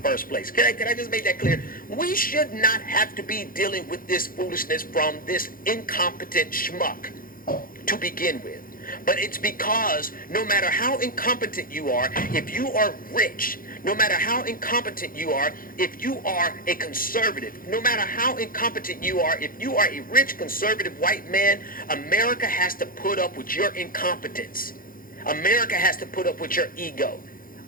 place. Can I just make that clear? We should not have to be dealing with this foolishness from this incompetent schmuck to begin with. But it's because no matter how incompetent you are, if you are rich, no matter how incompetent you are, if you are a conservative, no matter how incompetent you are, if you are a rich, conservative white man, America has to put up with your incompetence. America has to put up with your ego.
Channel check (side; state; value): right; late; 0.41 ms